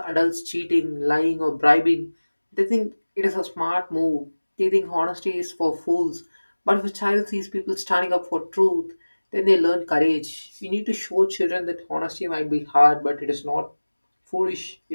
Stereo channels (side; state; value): both; inverted; correlation -1.00